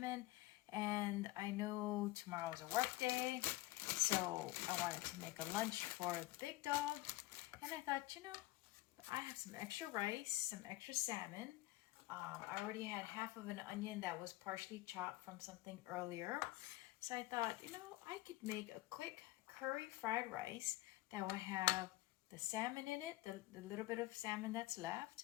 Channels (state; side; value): quieter; right; 18.2 dB